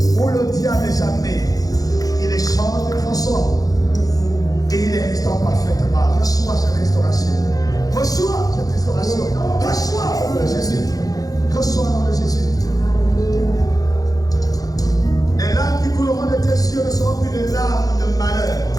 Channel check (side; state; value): right; late; 0.18 ms